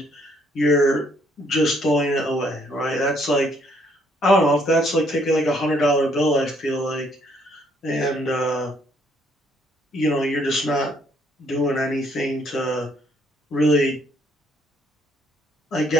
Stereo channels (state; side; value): normal; both; correlation 0.67